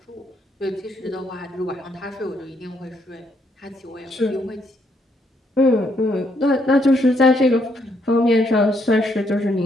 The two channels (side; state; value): both; normal; correlation 0.73